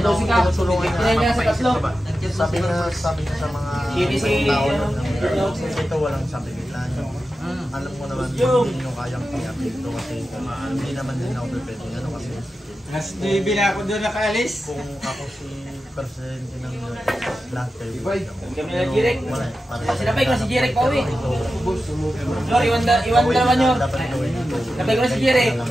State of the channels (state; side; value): normal; both; correlation 0.92